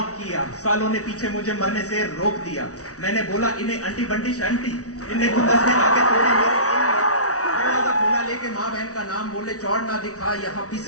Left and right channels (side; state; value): right; late; 0.66 ms